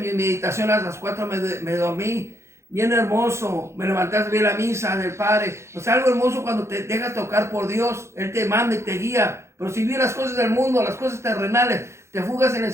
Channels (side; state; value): left; late; 0.13 ms